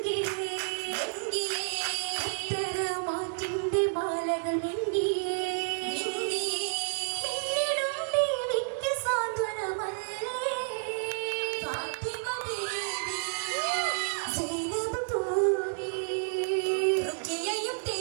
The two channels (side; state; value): left; silent; digital silence